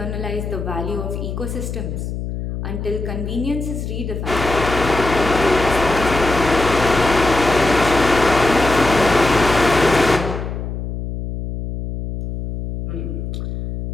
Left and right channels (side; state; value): left; noise; hum, 6 dB below the sound